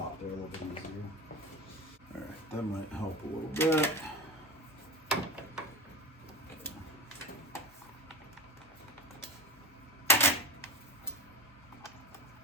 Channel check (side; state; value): both; normal; correlation 0.26